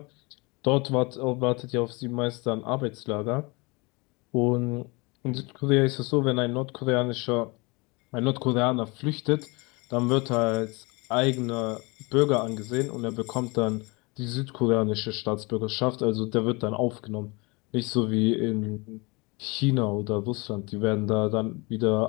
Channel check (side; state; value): right; quieter; 27.2 dB